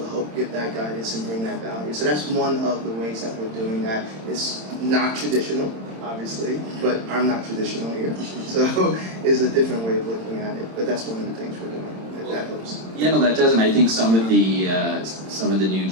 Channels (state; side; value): late; left; 26 ms